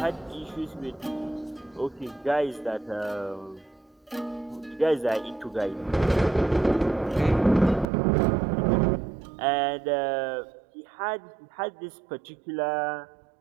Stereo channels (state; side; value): drops out; left; at 7.9 s